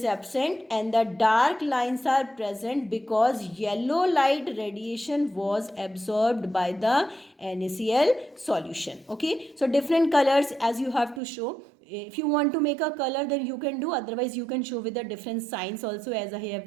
absent and the dark lines are present because yellow light radiation was absorbed by the NaCl solution. Okay, so different colors as you have to show. If you want to make a color, then you can do, otherwise you can show with the different signs also, as I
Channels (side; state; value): left; drops out; at 11.2 s